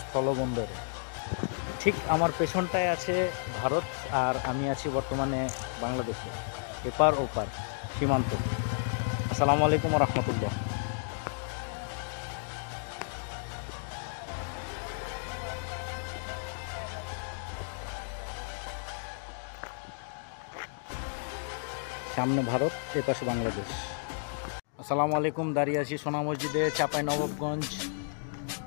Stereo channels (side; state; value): right; silent; digital silence